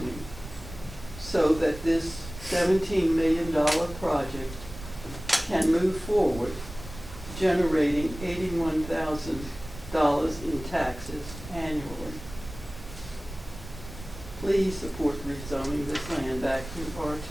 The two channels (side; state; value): right; noise; rumble, 14 dB below the sound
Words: so that this $17 million project can move forward, generating $81,000 in taxes annually. Please support rezoning this land back to